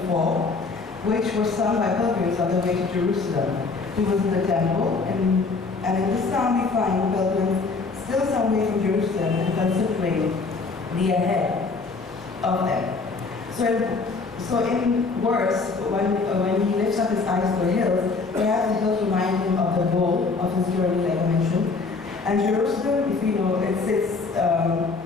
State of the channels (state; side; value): quieter; right; 4.2 dB